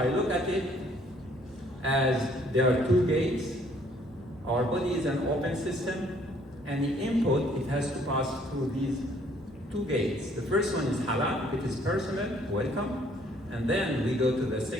look at it as there are two gates. Our body is an open system, and the input, it has to pass through these two gates. The first one is halal, if it is personal, welcome. And then we go to the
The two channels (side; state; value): both; normal; correlation 0.62